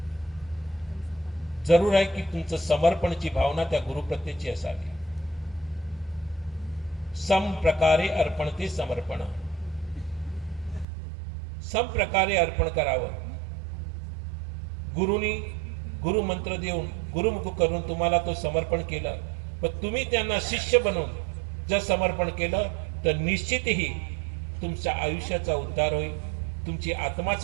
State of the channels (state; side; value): drops out; left; at 10.9 s